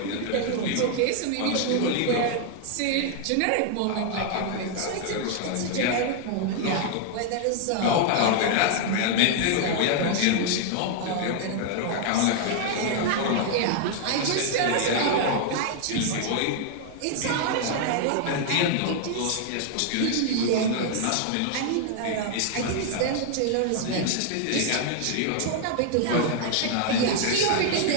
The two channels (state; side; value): different; both; correlation 0.00